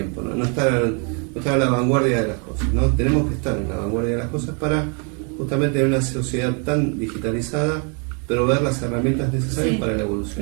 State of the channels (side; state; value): left; quieter; 37.6 dB